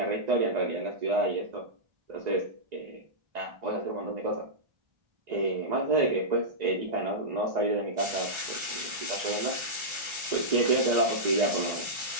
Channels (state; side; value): late; left; 1.4 ms